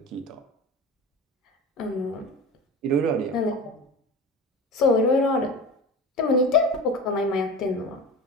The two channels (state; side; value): normal; both; correlation 0.32